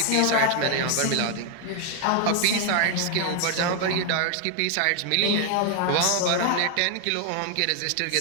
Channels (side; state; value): both; different; correlation 0.00